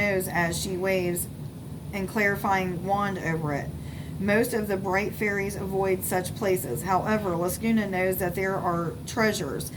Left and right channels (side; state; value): both; identical; correlation 1.00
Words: as she waves and clarifying wand over it. Most of the bright fairies avoid such places. However, Laguna knows that there are treasures